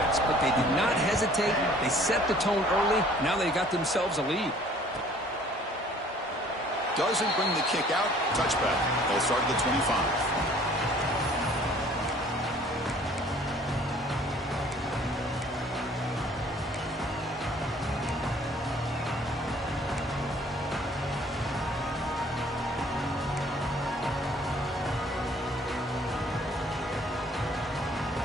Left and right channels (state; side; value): normal; both; correlation 0.55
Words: But they did not hesitate. They set the tone early. Now they got themselves a lead. Doesn't bring the kick out. Touchback. They'll start at the 25.